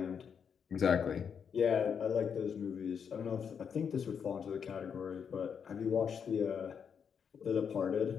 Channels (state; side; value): quieter; right; 7.1 dB